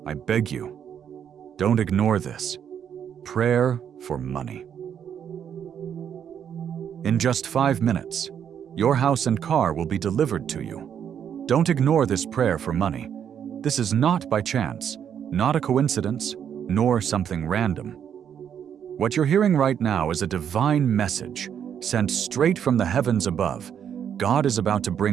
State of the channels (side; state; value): left; quieter; 8.6 dB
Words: I beg you, don't ignore this. Prayer for money. In just 5 minutes, your house and car will be delivered to you. Don't ignore this prayer for money. This is not by chance, not a coincidence, nor something random. What you're hearing right now is a divine message sent straight from the heavens above. God is about to